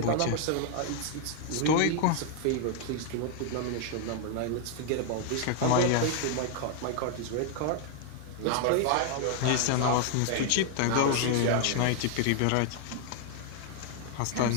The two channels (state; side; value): different; both; correlation 0.00